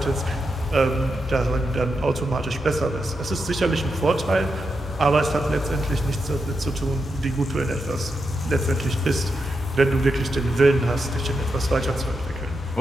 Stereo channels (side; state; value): both; normal; correlation 0.86